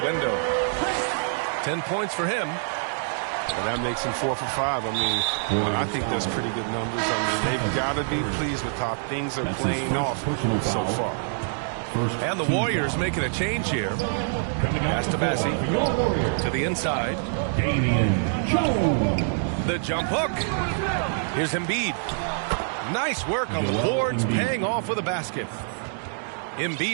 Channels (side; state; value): left; silent; digital silence